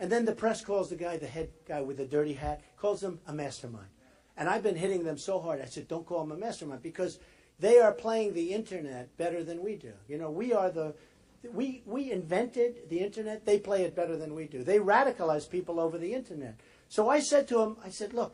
then the press calls the head guy with the dirty hat, calls him a mastermind. And I've been hitting them so hard. I said, don't call him a mastermind, because they are playing the internet better than we do. We invented the internet. They play it better than we do. They radicalize people over the internet. So I said to him,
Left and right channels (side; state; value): both; identical; correlation 1.00